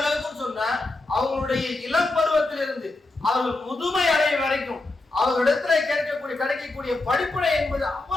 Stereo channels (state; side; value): quieter; right; 3.0 dB